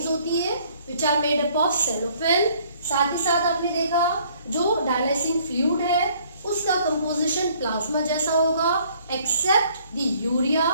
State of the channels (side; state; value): both; inverted; correlation -0.61